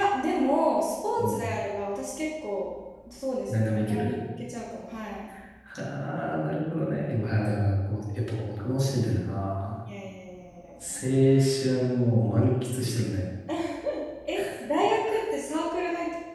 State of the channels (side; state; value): both; identical; correlation 1.00